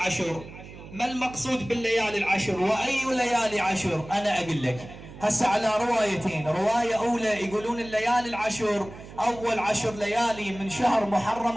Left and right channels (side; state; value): right; noise; hum, 16 dB below the sound